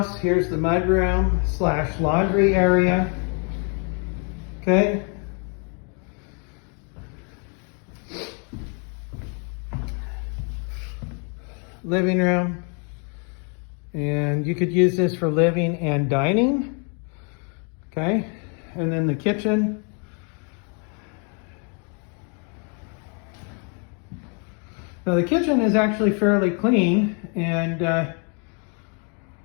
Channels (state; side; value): quieter; right; 38.2 dB